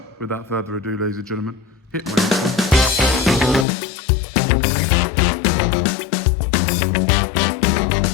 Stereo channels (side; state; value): right; drops out; at 3.7 s